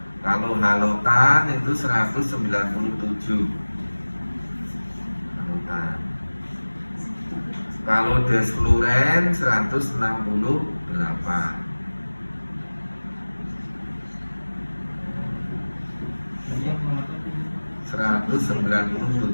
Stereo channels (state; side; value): inverted; both; correlation -1.00